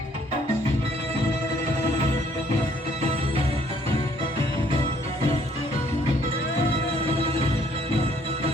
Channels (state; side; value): normal; both; correlation 0.63